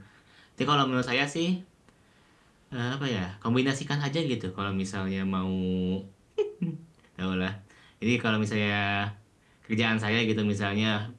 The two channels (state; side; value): identical; both; correlation 1.00